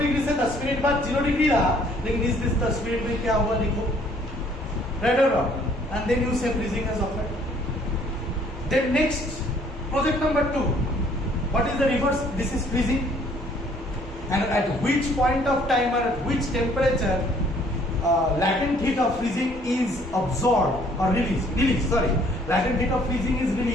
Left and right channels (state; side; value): normal; both; correlation 0.61